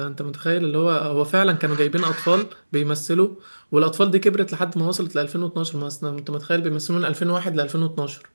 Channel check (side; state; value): both; inverted; correlation -1.00